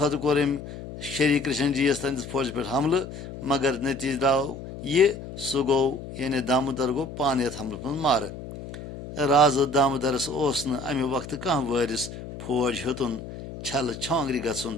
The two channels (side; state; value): left; noise; hum, 11 dB below the sound